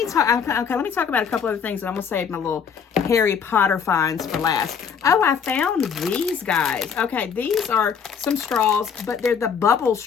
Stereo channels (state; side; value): quieter; right; 6.9 dB